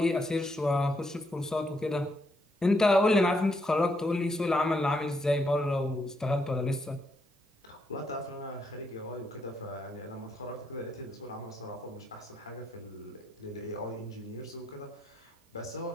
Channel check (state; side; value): normal; both; correlation 0.77